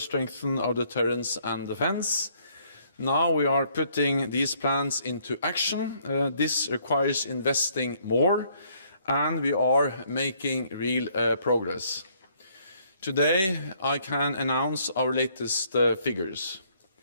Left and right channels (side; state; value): both; inverted; correlation -0.66